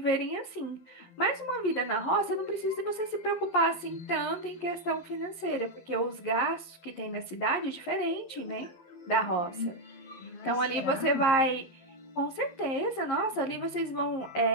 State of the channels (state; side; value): late; right; 11 ms